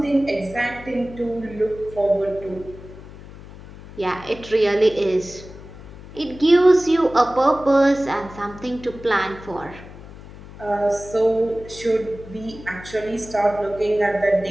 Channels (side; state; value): left; noise; hum, 17 dB below the sound